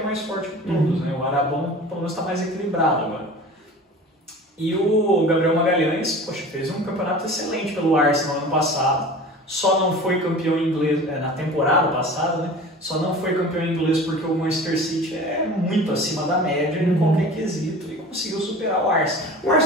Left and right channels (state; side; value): normal; both; correlation 0.39